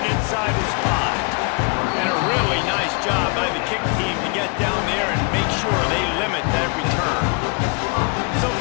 inside his 5. And a really nice job by the kick team to get down there and make sure they limit that return. So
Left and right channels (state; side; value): quieter; right; 32.6 dB